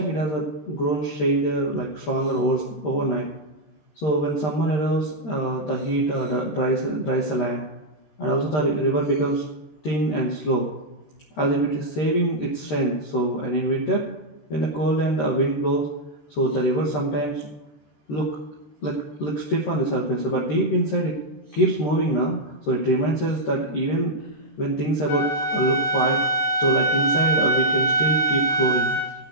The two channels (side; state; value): right; late; 13 ms